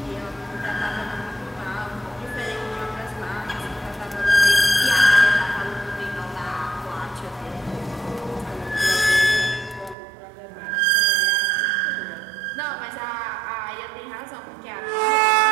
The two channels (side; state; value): left; drops out; at 10.0 s